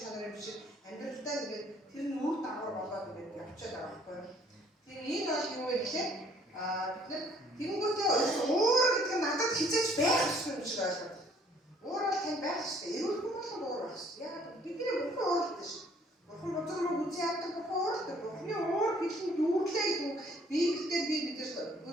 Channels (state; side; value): normal; both; correlation 0.60